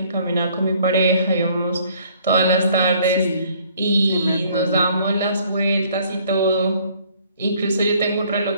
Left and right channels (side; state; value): both; inverted; correlation -0.60